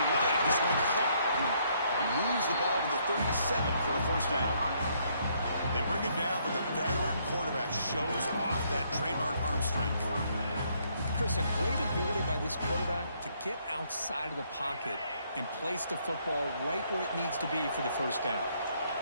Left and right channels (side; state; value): both; inverted; correlation -0.70